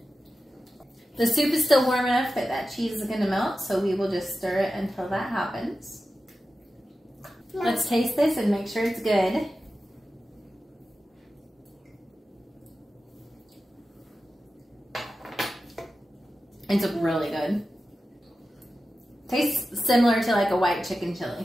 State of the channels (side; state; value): both; normal; correlation 0.93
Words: The soup is still warm enough that that cheese is going to melt, so we will just stir it until that happens. Let's taste this and make sure it's good. It's really good. Tastes similar to like a white chicken